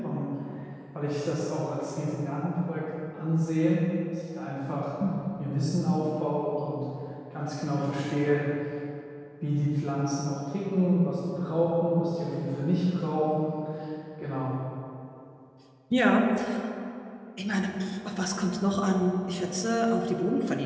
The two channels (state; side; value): identical; both; correlation 1.00